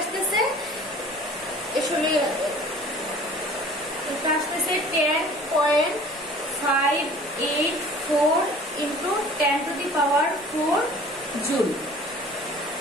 আসলে এটা আসতেছে 10.584 into 10 to the power 4 joule.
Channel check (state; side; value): normal; both; correlation 0.47